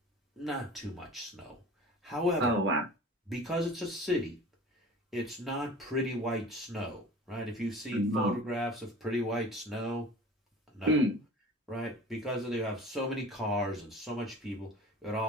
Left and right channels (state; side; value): normal; both; correlation 0.41